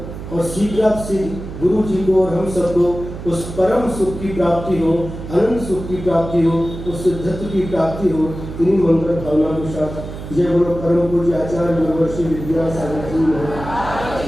और शीघ्र गुरु जी को और हम सबको उस परम सुख की प्राप्ति हो, अनंत सुख की प्राप्ति हो, उस सिद्धत्व की प्राप्ति हो। इन्हीं मंगल भावना के साथ जय बोलो परम पूज्य आचार्य गुरुवर्षी विद्यासागर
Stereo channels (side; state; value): right; noise; hum, 10 dB below the sound